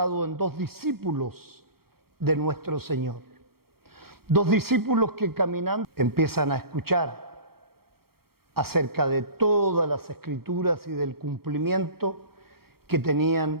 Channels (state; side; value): late; left; 0.94 ms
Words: en 2 discípulos de nuestro Señor. 2 discípulos que caminando empiezan a escuchar acerca de todas las escrituras y del cumplimiento que